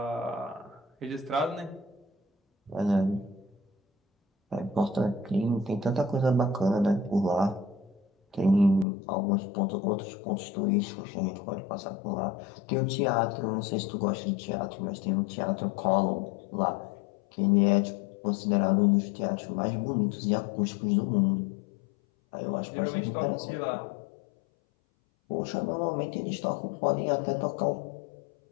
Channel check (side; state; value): right; drops out; at 8.8 s